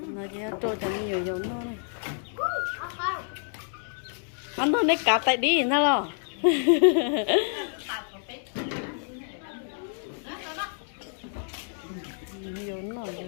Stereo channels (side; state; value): right; silent; digital silence